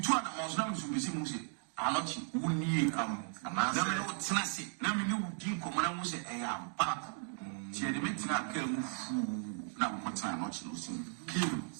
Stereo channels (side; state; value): left; silent; 53 dB below the other